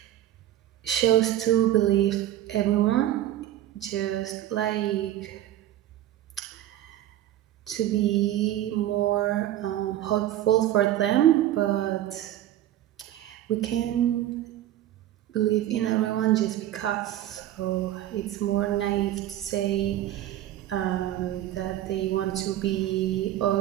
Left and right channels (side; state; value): left; quieter; 13.0 dB